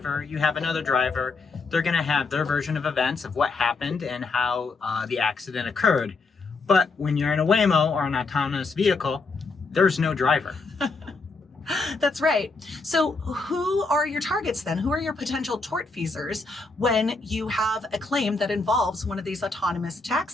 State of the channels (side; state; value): right; quieter; 3.9 dB